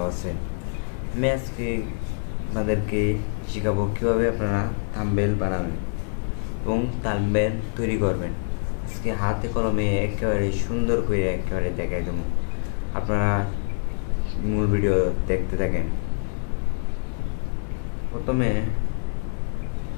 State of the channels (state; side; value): silent; right; 60 dB below the other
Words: আছেন। আমি আজকে আপনাদেরকে শেখাবো কীভাবে আপনারা থাম্বনেল বানাবেন এবং থাম্বনেল তৈরি করবেন। আজকে হাতে কলমে একেবারে সুন্দর করে একেবারে দেখাই দেবো। আপনারা মূল ভিডিও দেখতে থাকেন। প্রথমে